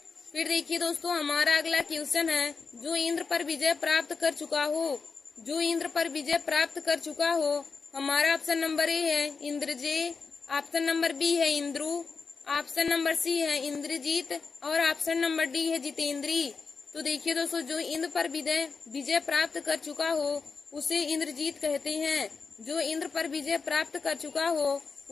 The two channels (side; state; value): right; quieter; 5.0 dB